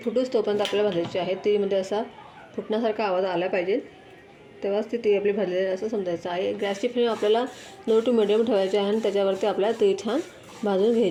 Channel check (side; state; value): both; identical; correlation 1.00